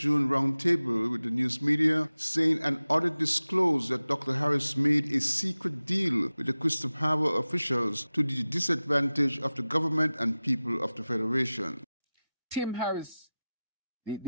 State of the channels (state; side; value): inverted; both; correlation -0.96